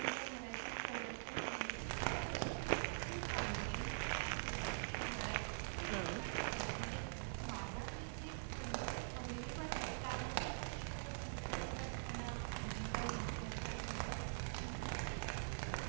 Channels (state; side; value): silent; left; digital silence